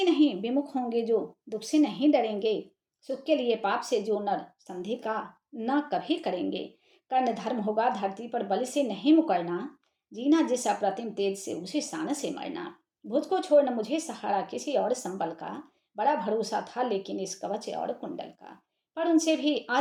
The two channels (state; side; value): identical; both; correlation 1.00